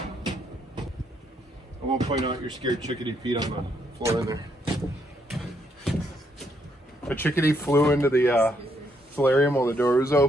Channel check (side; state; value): both; normal; correlation 0.74